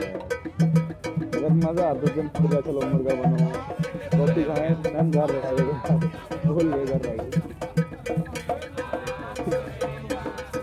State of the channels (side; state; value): both; identical; correlation 1.00